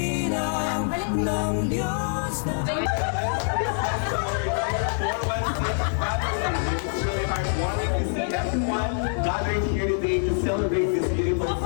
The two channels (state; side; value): silent; right; 62 dB below the other